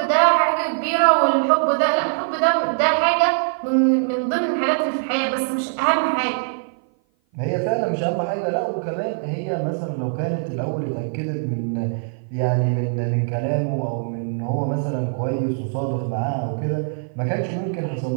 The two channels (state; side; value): silent; left; 56 dB below the other